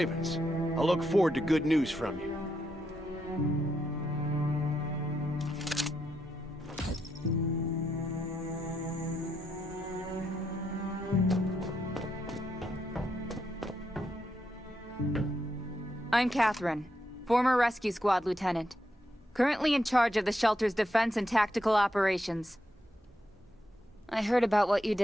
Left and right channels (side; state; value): both; normal; correlation 0.81